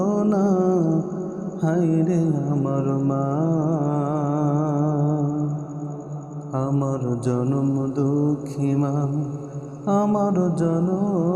হায়রে আমার মা, আমার জনম দুঃখী মা, আমার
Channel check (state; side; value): identical; both; correlation 1.00